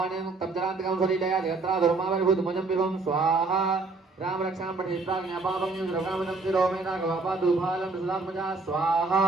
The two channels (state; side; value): quieter; left; 3.8 dB